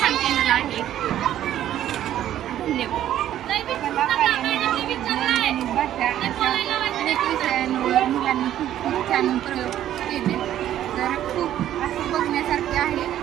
केलेलं आहे। धन्यवाद। मुलांनी खूप छान प्रयोग केले, तर खूप असं बघण्यासारखे आहे,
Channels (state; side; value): quieter; left; 11.8 dB